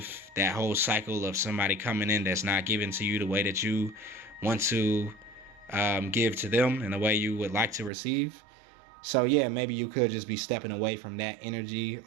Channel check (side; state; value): left; drops out; at 7.9 s